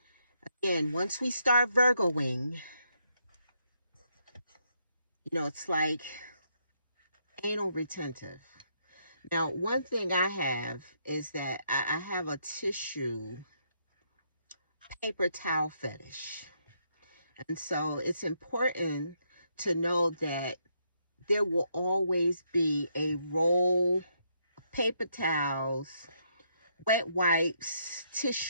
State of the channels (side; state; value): both; inverted; correlation -0.75